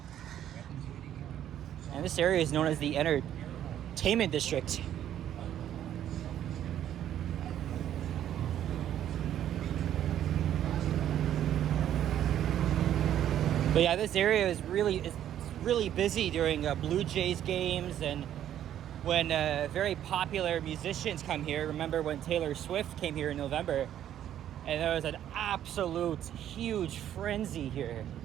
And this area is known as the Entertainment District. But yeah, this area is really busy during Blue Jays games and when very popular musicians come here. Remember when Taylor Swift came here in November? And there was an absolute huge frenzy here,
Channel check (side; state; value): left; quieter; 10.9 dB